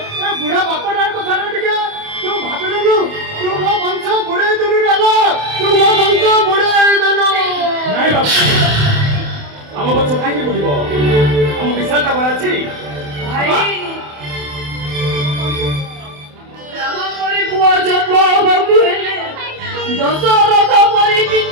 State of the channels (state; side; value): late; left; 27 ms